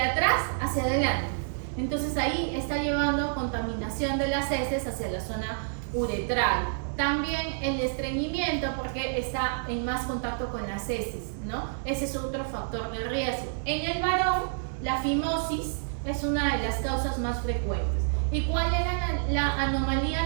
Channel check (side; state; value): left; silent; digital silence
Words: atrás hacia adelante. Entonces ahí está llevando contaminación de las heces hacia la zona uretral. También el estreñimiento, porque está en más contacto con las heces, ¿no? Ese es otro factor de riesgo. En el varón, la fimosis es una de las causas más frecuentes. ¿Y cuál era la anomalía